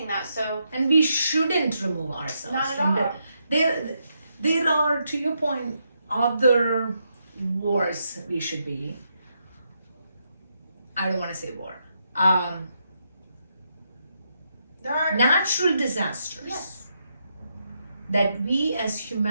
that. So, and we shouldn't remove ourselves not at from all. There are, to your point, other wars we should be. I don't want to say war. There are natural disasters. Yes. That we as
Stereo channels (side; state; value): both; inverted; correlation -0.80